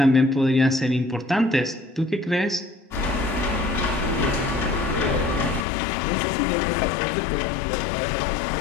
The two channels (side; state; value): right; drops out; at 5.7 s